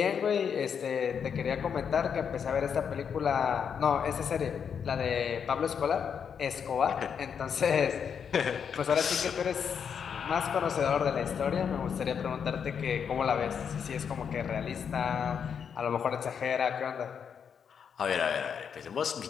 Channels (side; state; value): right; quieter; 7.2 dB